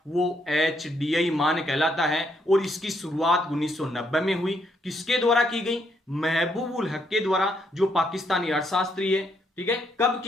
वो HDI मान कहलाता है। और इसकी शुरुआत 1990 में हुई। किसके द्वारा की गई? महबूब उल हक के द्वारा, जो पाकिस्तानी अर्थशास्त्री है। ठीक है, कब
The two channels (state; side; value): normal; both; correlation 0.74